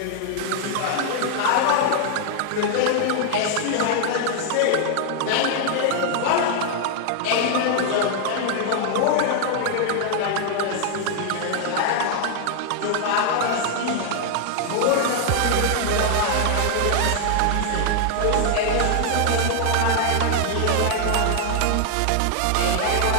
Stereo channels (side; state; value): both; different; correlation 0.00